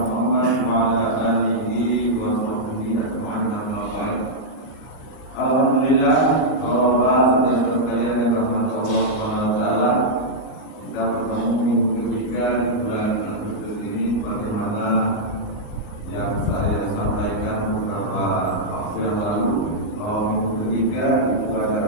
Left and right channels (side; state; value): right; late; 37 ms